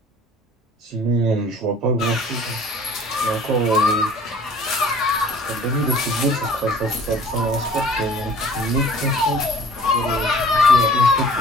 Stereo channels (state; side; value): normal; both; correlation 0.49